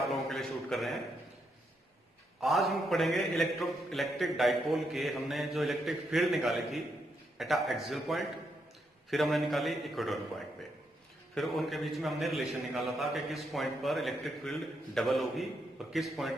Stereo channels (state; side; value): normal; both; correlation 0.79